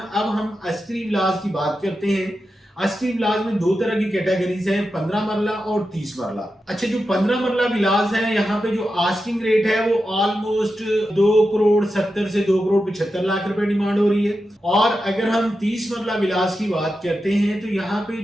हम अस्करी विलास की बात करते हैं। अस्करी विलास में 2 तरह की कैटेगरीज हैं, 15 मरला और 30 मरला। अच्छा, जो 15 मरला विलास है यहाँ पे जो आस्किंग रेट है वो ऑलमोस्ट 2 करोड़ 70 से 2 करोड़ 75 लाख रुपए डिमांड हो रही है। और अगर हम 30 मरला विलास की बात करते हैं, तो यहाँ पे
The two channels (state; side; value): normal; both; correlation 0.90